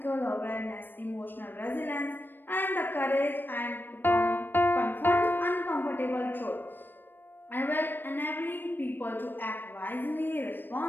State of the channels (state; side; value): late; right; 0.094 ms